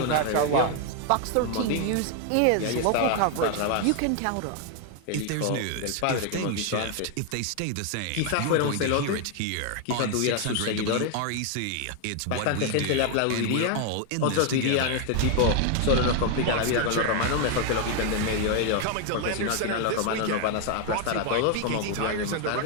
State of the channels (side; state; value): both; different; correlation 0.01